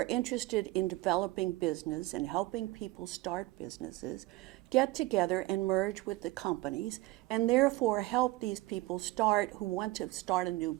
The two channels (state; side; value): quieter; left; 19.5 dB